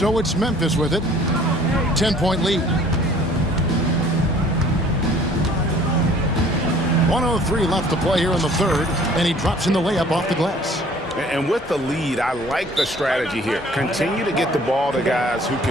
it's Memphis with it. 10-point lead. 1:03 left to play here in the third, and he drops in the layup off the glass. And with the lead, I like the strategy here. Continue to get the ball to guys who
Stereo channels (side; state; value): both; normal; correlation 0.54